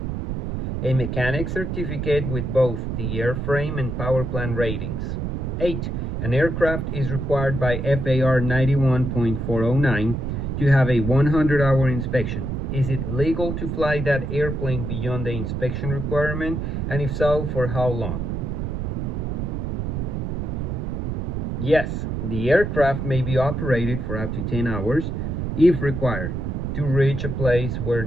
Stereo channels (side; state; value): right; noise; rumble, 3 dB below the sound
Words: A mechanic certificate with both the airframe and power plant ratings. 8. An aircraft is required by FAR 91.409 to have a 100-hour inspection. Is it legal to fly that airplane beyond the inspection requirement, and if so, for how long? Yes, the aircraft may be operated for up to 10 hours, if required, to reach a place where